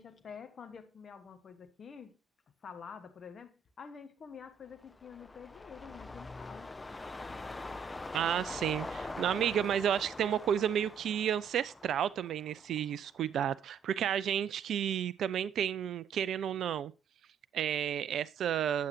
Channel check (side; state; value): left; quieter; 7.8 dB